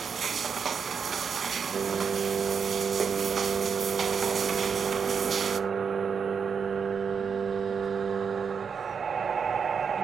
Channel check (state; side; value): quieter; left; 6.4 dB